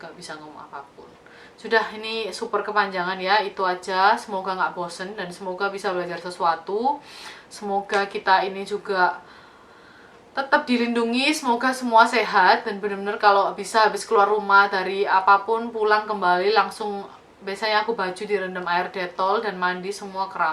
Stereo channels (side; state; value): both; identical; correlation 1.00